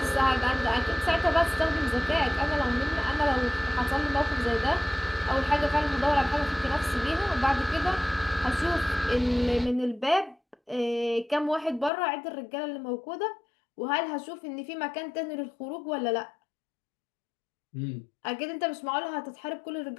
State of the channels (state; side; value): drops out; right; at 11.9 s